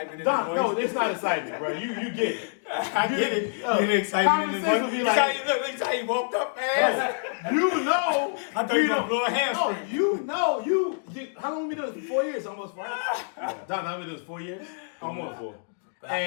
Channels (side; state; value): right; silent; digital silence